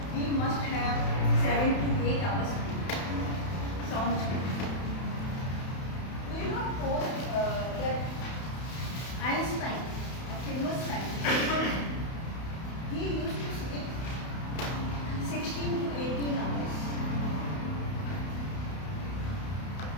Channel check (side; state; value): right; late; 31 ms